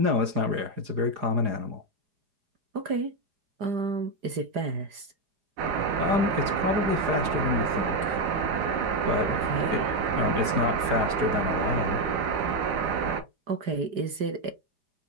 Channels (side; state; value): left; late; 4.9 ms